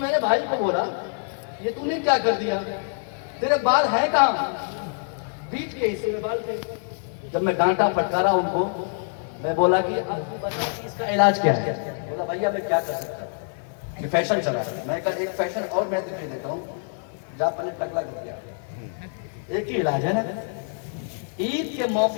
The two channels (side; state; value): right; silent; 62 dB below the other